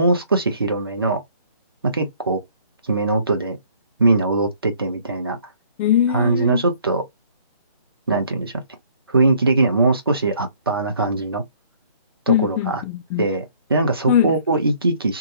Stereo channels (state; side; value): inverted; both; correlation -0.58